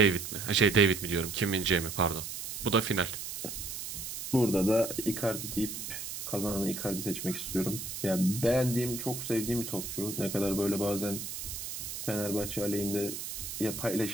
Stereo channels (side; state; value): right; noise; hiss, 7 dB below the sound